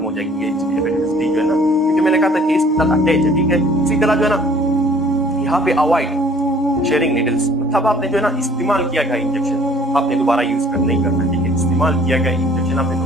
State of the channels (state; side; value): normal; both; correlation 0.55